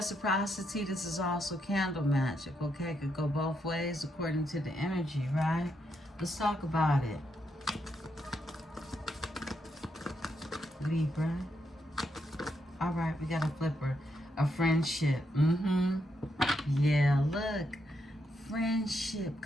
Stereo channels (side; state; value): both; normal; correlation 0.80